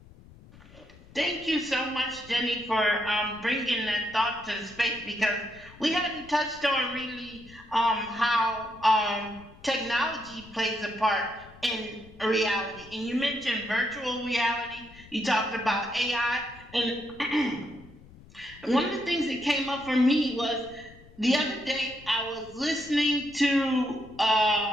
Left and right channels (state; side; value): noise; left; rumble, 22 dB below the sound